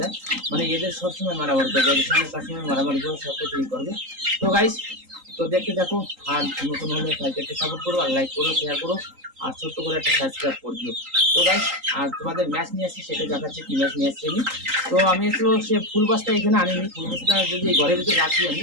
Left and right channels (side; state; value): left; late; 3.8 ms